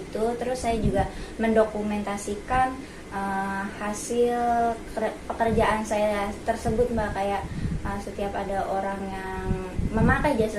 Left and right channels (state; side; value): identical; both; correlation 1.00